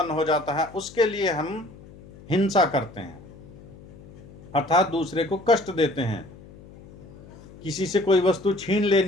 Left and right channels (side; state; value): left; noise; hum, 20 dB below the sound